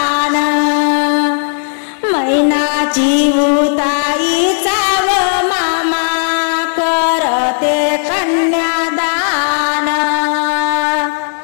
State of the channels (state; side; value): silent; right; digital silence